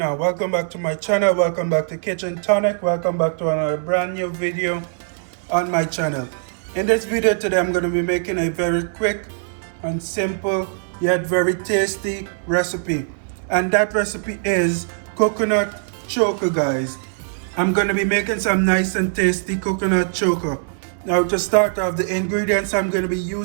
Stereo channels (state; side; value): silent; left; 65 dB below the other